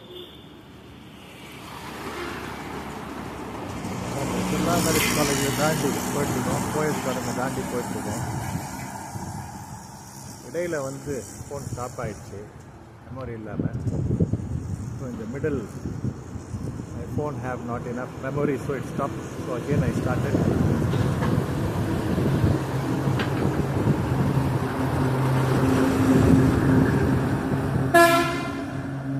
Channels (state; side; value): identical; both; correlation 1.00